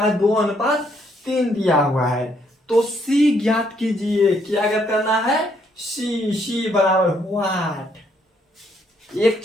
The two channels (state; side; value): normal; both; correlation 0.71